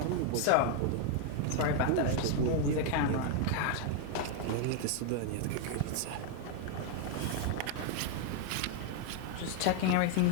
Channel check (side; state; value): both; different; correlation 0.00